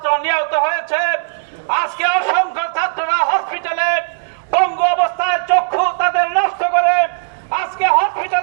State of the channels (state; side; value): silent; left; digital silence